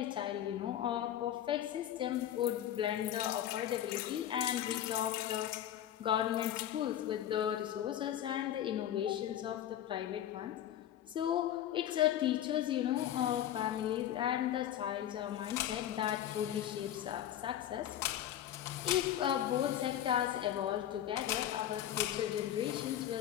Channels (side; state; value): right; quieter; 11.4 dB